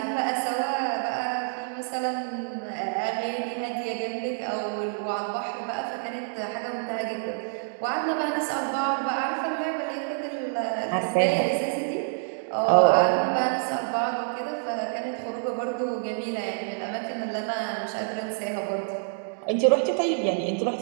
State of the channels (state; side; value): silent; left; digital silence